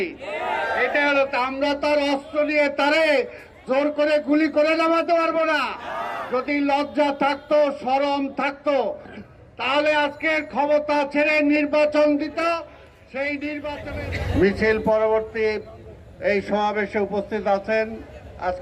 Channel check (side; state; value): both; identical; correlation 1.00